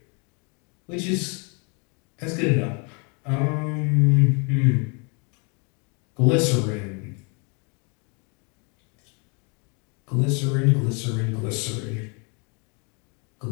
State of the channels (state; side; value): quieter; right; 34.7 dB